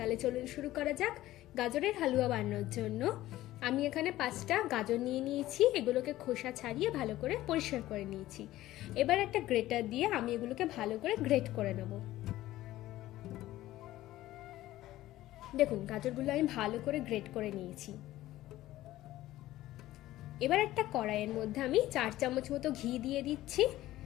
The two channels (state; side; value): quieter; right; 15.4 dB